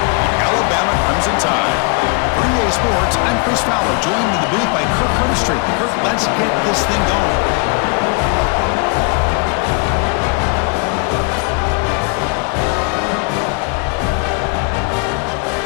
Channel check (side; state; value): right; quieter; 33.5 dB